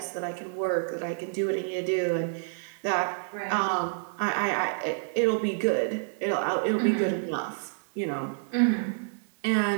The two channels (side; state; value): left; silent; digital silence